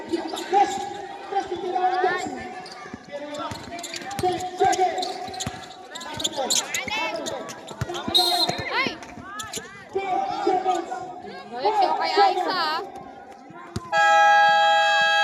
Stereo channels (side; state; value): both; identical; correlation 1.00